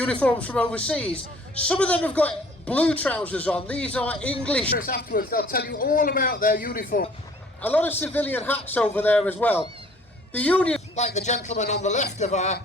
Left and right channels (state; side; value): normal; both; correlation 0.54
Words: from overseas. Some of them have got blue trousers on. These are English. Afterwards, they'll tell you all about their uniform. A lot of civilian hats over there as well. The Union, like the gentleman on the left of our